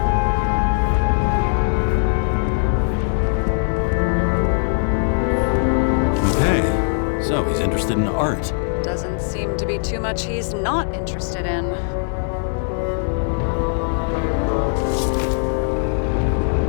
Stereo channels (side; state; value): right; silent; digital silence